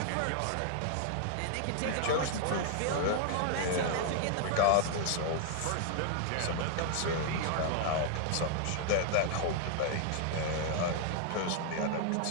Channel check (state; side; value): different; both; correlation 0.00